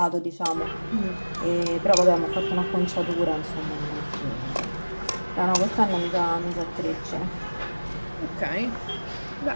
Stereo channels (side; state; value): both; inverted; correlation -1.00